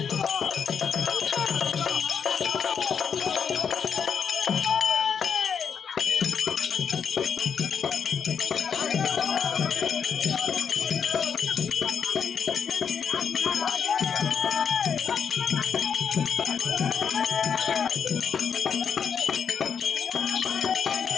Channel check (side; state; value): right; quieter; 6.9 dB